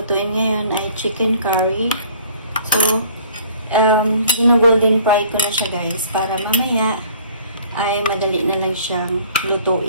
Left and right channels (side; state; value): both; inverted; correlation -0.53